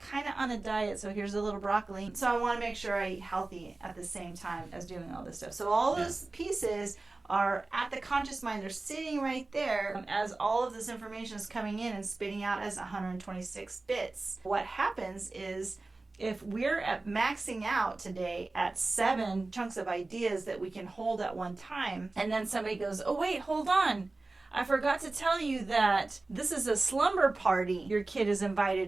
of on a diet, so here's a little broccoli. So I want to make sure I eat healthy at the same time as doing all this stuff. So all those pieces are at the conscious mind. They're sitting right there as all of this information is coming in and spitting out as 126 bits. What happens is, if we're at maxing out today at 7 chunks of ideas that we can hold at one time, and then somebody goes, oh wait, hold on, I forgot to tell you that this is a slumber party your kid is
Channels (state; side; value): quieter; left; 3.3 dB